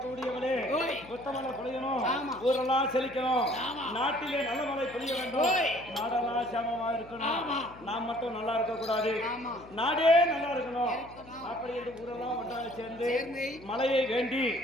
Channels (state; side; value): noise; left; hum, 19 dB below the sound